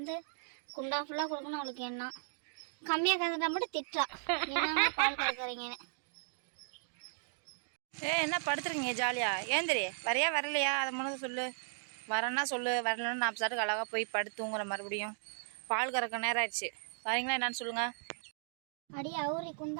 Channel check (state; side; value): silent; left; digital silence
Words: குண்டா ஃபுல்லாக கொடுக்கணும். அவளுக்கு என்ன கம்மியாக கறந்துட்டா மட்டும் திட்டா, என்ன பால் கறக்குறீங்கன்னு. என்ன படுத்துறீங்க ஜாலியா? ஏந்திரி வரையா வரலையா அதை முன்னது சொல்லு. வரேன்னா சொல்லு, வரலன்னா நான் சாட்டுக்கு அழகாக போய் படுத்துங்கிற மறுபடியும் பால் கறக்க நேரம் ஆயிடுச்சு. வரீங்களா என்னன்னு சொல்லுங்க. அடி அவரி